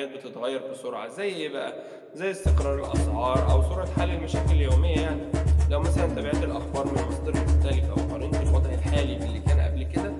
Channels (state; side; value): identical; both; correlation 1.00